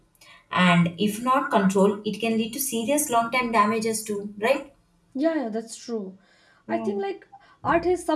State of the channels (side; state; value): both; identical; correlation 1.00